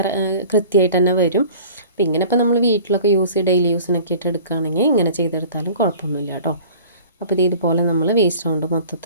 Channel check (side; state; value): both; inverted; correlation -0.45